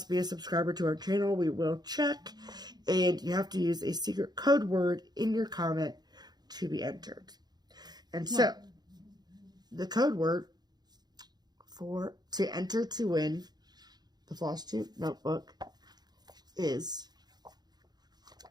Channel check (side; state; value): left; late; 0.20 ms